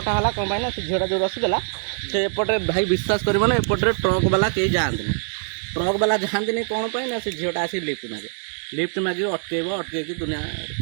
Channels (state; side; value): silent; left; 63 dB below the other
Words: ହେଲା କ'ଣ ପାଇଁ ନା ସେ ଝିଅଟା ଯେଉଁ ରସିଦେଲା ସେ ଏପଟେ ଭାଇ ବିଶ୍ୱାସ କରିବନି, ଏପଟରେ ଟ୍ରକ୍ ବାଲା କେହି ଯାଆନ୍ତିନି। ଟ୍ରକ୍ ବାଲା ଯାଆନ୍ତିନି କ'ଣ ପାଇଁ ନା ସେ ଝିଅଟା ଆସିକି ଲିଫ୍ଟ ମାଗିବ, ଅଟକେଇକି ଦୁନିଆ,